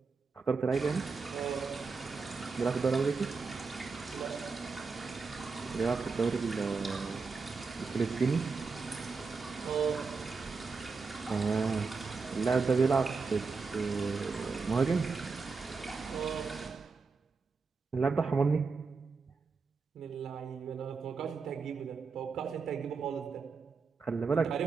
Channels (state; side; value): quieter; left; 4.7 dB